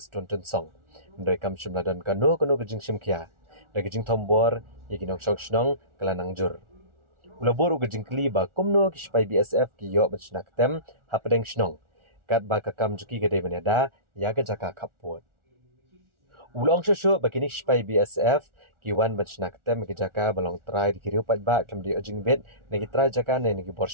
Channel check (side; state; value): left; late; 1.4 ms